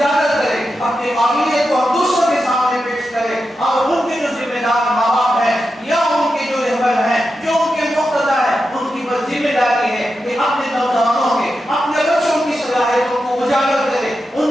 کریں، اپنی قابلیت کو ہم دوسروں کے سامنے پیش کریں. اور ان کے جو ذمہ دار ماں باپ ہیں یا ان کے جو رہبر ہیں، جو ان کے مقتدی ہیں، ان کی بس ذمہ داری ہے کہ اپنے نوجوانوں کے، اپنے بچوں کی صلاحیتوں کو اجاگر کرے، ان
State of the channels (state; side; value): normal; both; correlation 0.89